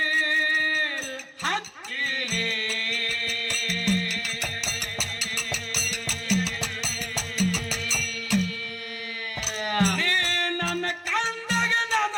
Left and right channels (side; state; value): both; identical; correlation 1.00